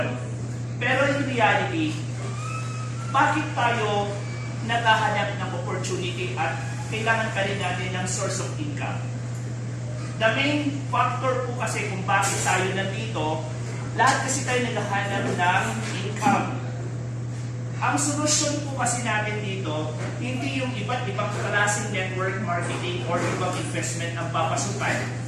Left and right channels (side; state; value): both; identical; correlation 1.00